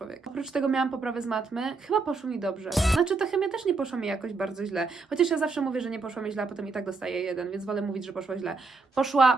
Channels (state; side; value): quieter; left; 4.1 dB